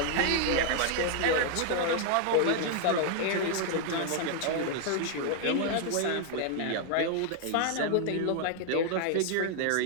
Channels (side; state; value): both; different; correlation 0.00